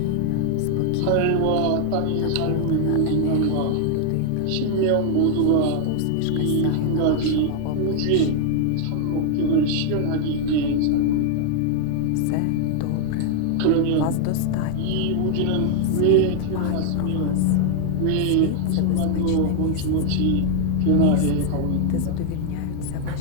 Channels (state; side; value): different; both; correlation 0.00